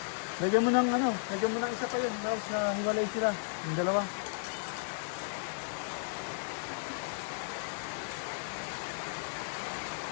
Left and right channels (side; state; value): right; silent; 55 dB below the other